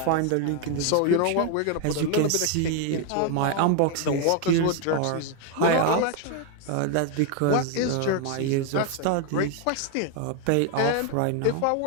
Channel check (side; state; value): both; different; correlation 0.01